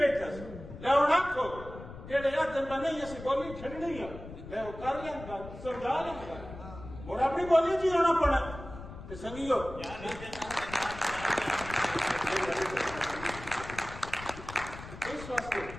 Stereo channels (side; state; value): left; noise; rumble, 13 dB below the sound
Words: لوڑا کو جڑے ادھر نہیں اسی بولی چھڑنی ہے میں وہ کر لیں گا سمجھا لیں گا بوڑا اپنی بولی جی ہونا پڑا تے سنگیو اس واسطے